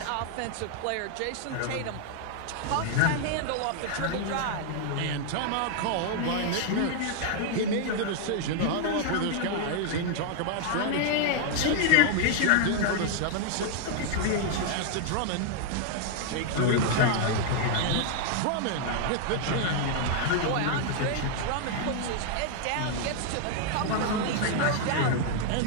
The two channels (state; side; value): different; both; correlation -0.01